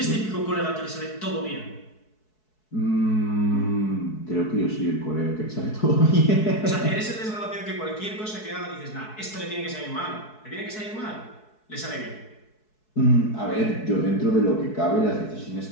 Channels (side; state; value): right; late; 4.7 ms